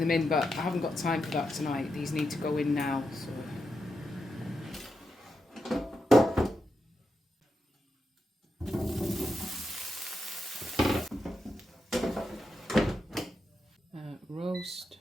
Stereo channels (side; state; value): both; normal; correlation 0.86